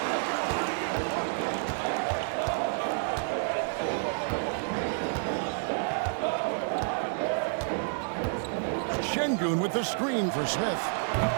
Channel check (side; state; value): left; silent; digital silence